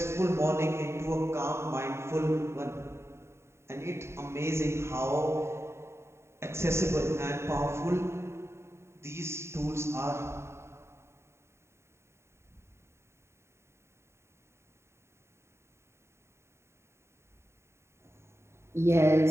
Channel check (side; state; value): left; late; 0.13 ms